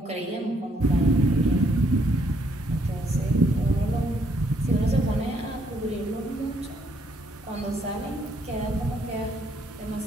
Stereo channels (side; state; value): both; normal; correlation 0.70